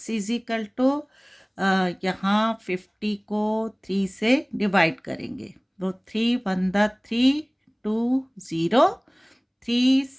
इज इक्वल टू यहाँ 50 को 3 से डिवाइड करेंगे तो 3 2 0 3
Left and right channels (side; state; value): both; identical; correlation 1.00